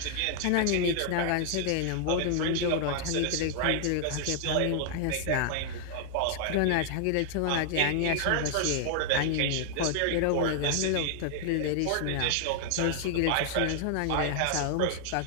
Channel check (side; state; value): both; different; correlation 0.00